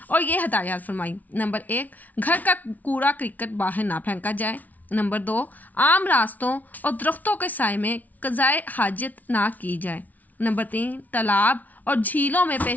और ये हदायत फरमाई। नंबर 1, घर का कूड़ा क्रिकेट बाहर ना फेंका जाए। नंबर 2, आम रास्तों और दरख्तों के साए में क़ज़ाए हाजत ना की जाए। नंबर 3, तालाब और झीलों में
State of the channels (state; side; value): late; right; 0.076 ms